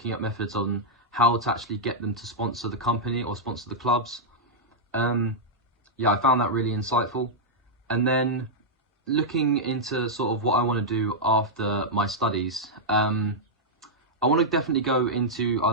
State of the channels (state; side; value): normal; both; correlation -0.07